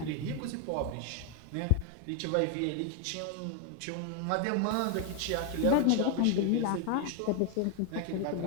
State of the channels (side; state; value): both; different; correlation 0.00